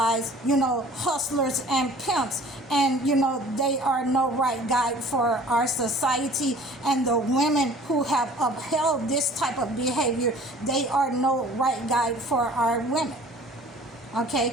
hustlers and pimps. And, they are no right guide for our society. And the women who have upheld this type of behavior, they are no right guide for our women.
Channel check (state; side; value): normal; both; correlation 0.49